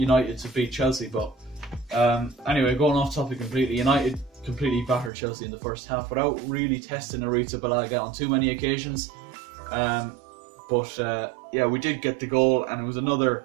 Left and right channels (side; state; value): left; drops out; at 5.1 s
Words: to beat Chelsea. But anyway, going off topic completely, United completely battered Chelsea in the first half without really testing Arrizabalaga on too many occasions. But yeah, we did get the goal, and it was another